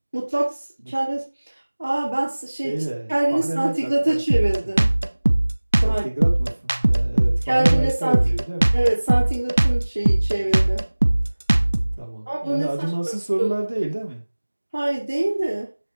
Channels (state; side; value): inverted; both; correlation -1.00